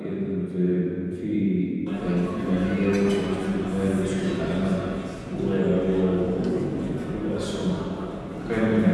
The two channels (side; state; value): both; identical; correlation 1.00